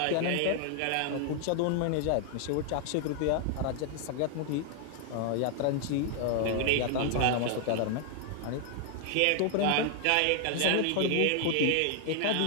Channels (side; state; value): both; different; correlation 0.00